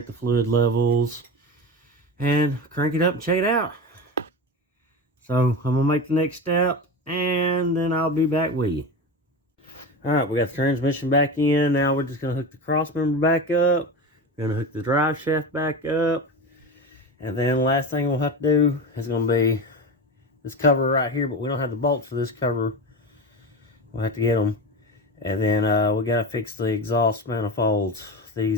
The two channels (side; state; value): both; normal; correlation 0.24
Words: the fluid levels and crank it up and check it out. So I'm gonna make the next step and then I'll be back with you. All right, we got the transmission back in. Now we're just gonna hook the cross member back up. We're gonna hook the drive shaft back up. And then the last thing we'll have to do is gonna be this cover right here, but we don't have the bolts for this cover. We'll have to get them. And then we gotta fix the exhaust manifolds.